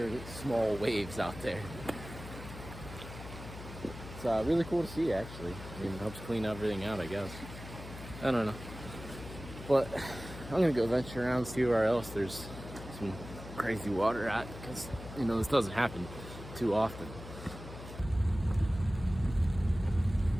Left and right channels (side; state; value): left; noise; hum, 12 dB below the sound